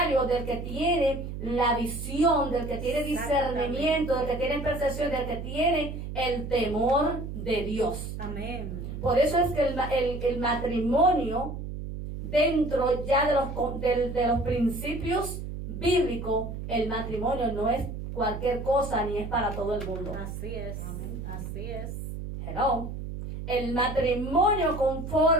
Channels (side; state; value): right; noise; hum, 7 dB below the sound